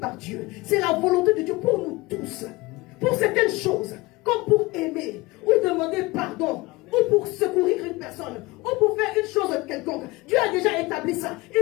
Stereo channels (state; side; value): quieter; right; 22.2 dB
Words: Dieu. C'est la volonté de Dieu pour nous tous. Pour certaines choses, comme pour aimer, ou demander pardon, ou pour secourir une personne, ou pour faire une chose quelconque. Dieu a déjà établi ça.